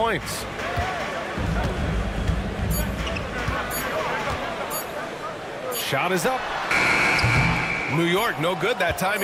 Shot is up. New York, no good that time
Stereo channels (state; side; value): identical; both; correlation 1.00